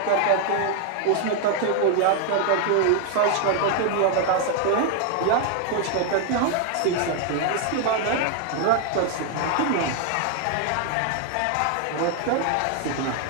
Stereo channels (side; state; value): both; different; correlation 0.00